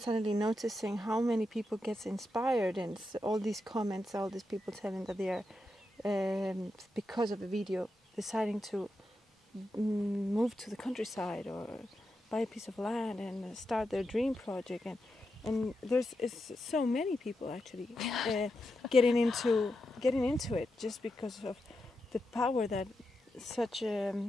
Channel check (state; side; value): normal; both; correlation 0.87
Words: noticing how many people gets inspired, and all these comments, all these people telling that they are because of a video deciding to move to the countryside or buy a piece of land and start their dream project, and there's so many people actually getting into it just because of the power that such a